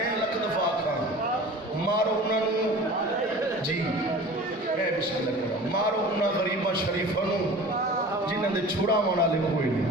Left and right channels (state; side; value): normal; both; correlation 0.40